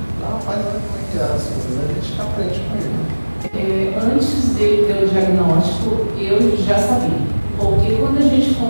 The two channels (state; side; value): inverted; both; correlation -1.00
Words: Rapaz, olha como é que é as coisas, a gente aprende com ele. Antes dele ter o diagnóstico, eu já sabia. Porque quando a gente